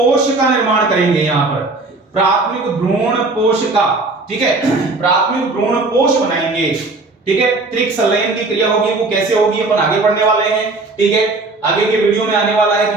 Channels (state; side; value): quieter; left; 3.4 dB